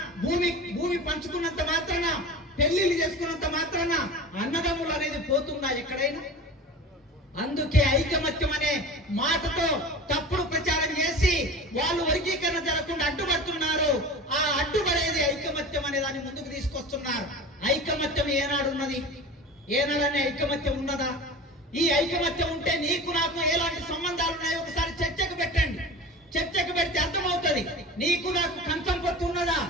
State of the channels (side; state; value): both; normal; correlation 0.34